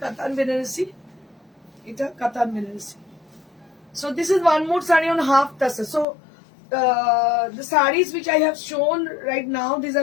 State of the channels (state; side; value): drops out; right; at 6.1 s